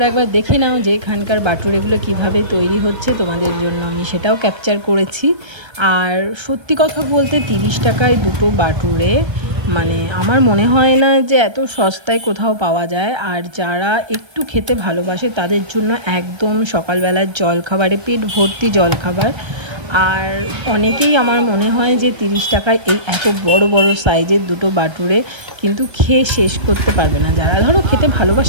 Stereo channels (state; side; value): late; left; 1.3 ms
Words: একবার দেখে নাও যে এখানকার বাটুরেগুলো কিভাবে তৈরি হচ্ছে। তোমাদের জন্য আমি সেটাও ক্যাপচার করেছি। আর সত্যি কথা বলতে 30 টাকায় দুটো বাটুরে, মানে আমার মনে হয় না যে এত সস্তায় কোথাও পাওয়া যায়। আর যারা একটু খেতে ভালোবাসে তাদের জন্য একদম সকালবেলার জলখাবারে পেট ভর্তি জলখাবার। আর অনেকেই আমার মনে হয় যে 30 টাকায় এই এত বড় বড় সাইজের দুটো বাটুরে কিন্তু খেয়ে শেষ করতে পারবে না। যারা ধরো খেতে